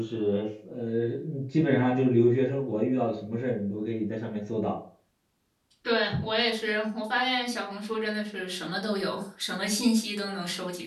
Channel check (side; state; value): both; identical; correlation 1.00